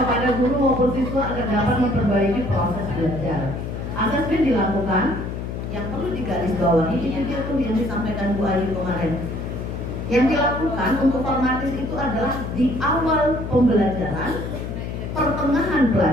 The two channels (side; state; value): left; noise; hum, 6 dB below the sound